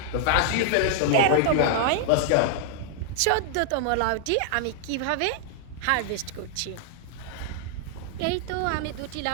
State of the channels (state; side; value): different; both; correlation 0.00